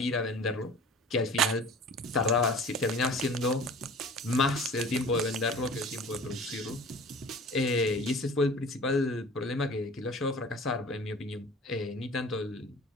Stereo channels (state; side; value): normal; both; correlation 0.43